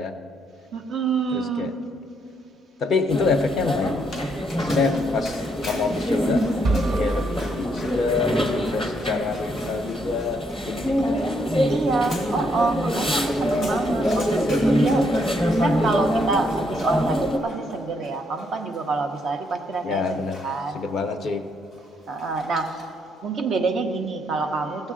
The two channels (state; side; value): normal; both; correlation 0.74